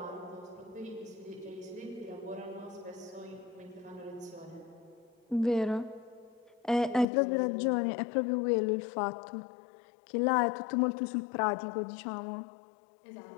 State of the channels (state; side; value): drops out; right; at 7.1 s